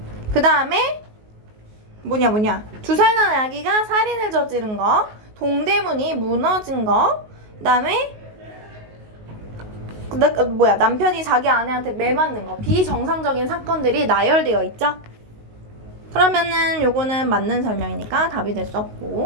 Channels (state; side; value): late; left; 19 ms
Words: 그 다음에 두 살 난 아기가 살인을 저지른 거, 동대문이 무너진 거, 그다음에 남편이 자기 아내한테 매 맞는 거, 비정상적인 사건들이 나열되어 있죠. 그러면은 요거는 맞는 설명이니까 답이 될 수